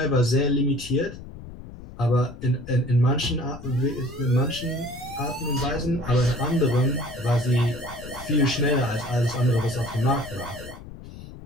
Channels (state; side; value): noise; left; rumble, 14 dB below the sound